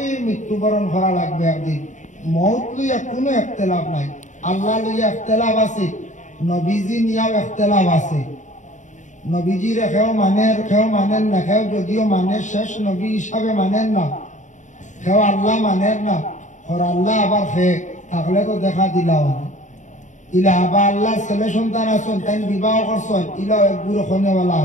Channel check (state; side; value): late; right; 0.36 ms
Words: মৃত্যুবরণ করা লাগবে একদিন। মৌত লইয়া কোনো একতেলাফ নাই, আল্লাহ লইয়া একতেলাফ আছে, নবীজি নিয়েও একতেলাফ আছে। নবীজির খেও মানেন না, খেও যদিও মানে শেষ নবী হিসাবে মানেন না, খেও আল্লাহ মানেন না। ওর আল্লাহ আবার খে থাকলে তো দেখা দিলাও না। ইলা আবার আল্লাহ ছেলে সন্তান আসন, তাই বিবাহ করছেন, ইলাও এক বুড়ো খনেওয়ালা